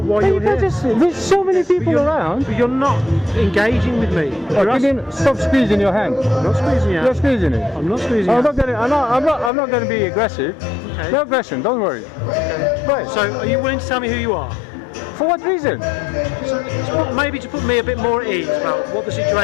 why Hey, you're you can't here. just, there's so many people around. But you're not engaging with me. Oh, You're can you stop squeezing your hand? I'm not squeezing you. You're squeezing it. I'm not squeezing I'm you. not gonna. I'm not gonna be aggressive. Okay. No aggression. Don't worry. Right. So are you willing to tell me who you are? For what reason? Maybe to put me a bit more at ease about what the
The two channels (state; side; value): drops out; right; at 9.5 s